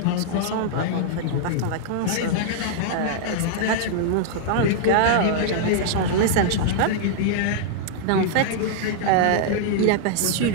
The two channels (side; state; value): both; different; correlation -0.01